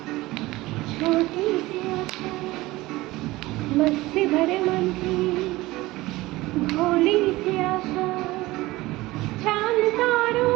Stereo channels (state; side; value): quieter; left; 19.2 dB